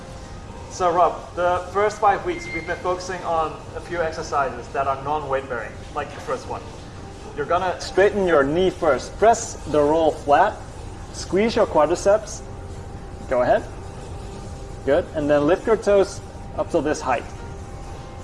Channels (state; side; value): identical; both; correlation 1.00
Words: So Rob, the first 5 weeks we've been focusing on a few exercises that are non-weight bearing, like the first one. You're gonna straighten your knee first. Press the roll flat, squeeze your quadriceps. Go ahead. Good. And then lift your toes up to this height.